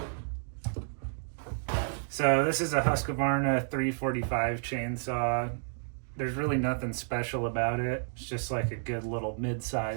So this is a Husqvarna 345 chainsaw. There's really nothing special about it. It's just like a good little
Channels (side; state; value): left; silent; digital silence